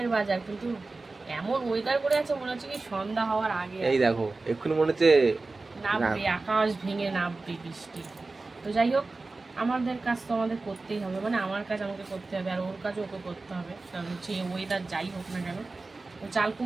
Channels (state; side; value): quieter; left; 3.5 dB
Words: বাজার, কিন্তু এমন ওয়েদার করে আছে মনে হচ্ছে কি সন্ধ্যা হওয়ার আগে। এই দেখো এক্ষুনি মনে হচ্ছে নামবে, আকাশ ভেঙে নামবে বৃষ্টি। তো যাই হোক, আমাদের কাজ তো আমাদের করতেই হবে, মানে আমার কাজ আমাকে করতে হবে আর ওর কাজও ওকে করতে হবে, কারণ হচ্ছে ওয়েদার যাই হোক না কেন। তো চাল